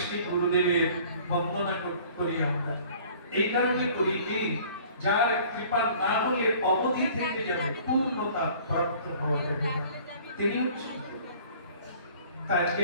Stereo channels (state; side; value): inverted; both; correlation -0.51